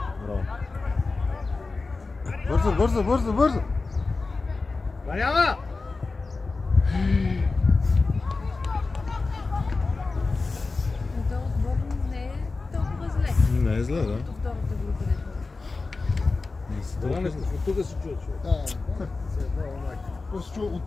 Бързо! Ванява! Това отбор не е толкова зле. Не е зле, да. Като втората група не е. Това не тук се чува човек. После чу от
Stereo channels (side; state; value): right; quieter; 3.8 dB